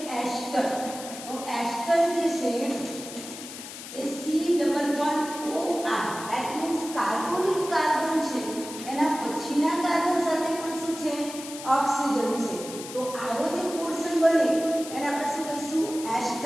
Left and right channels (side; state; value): left; noise; hiss, 12 dB below the sound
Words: એસ્ટર, તો એસ્ટર જે છે એ C double bond OR, that means carbonic carbon છે એના પછીના કાર્બન સાથે પણ શું છે? ઓક્સિજન છે। તો આવો જે પોર્શન બને એને આપણે શું કહીશું?